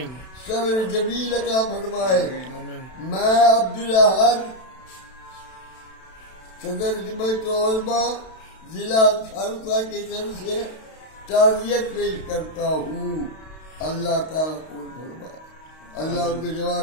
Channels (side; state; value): right; late; 32 ms